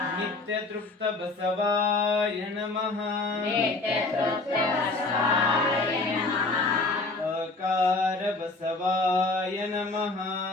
ನಿತ್ಯ ತೃಪ್ತ ಬಸವಾಯ ನಮಃ ಅಕಾರ ಬಸವಾಯ ನಮಃ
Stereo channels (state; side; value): quieter; right; 3.3 dB